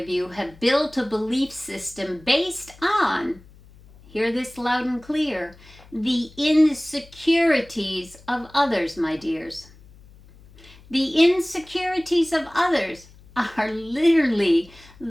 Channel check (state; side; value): noise; left; hum, 24 dB below the sound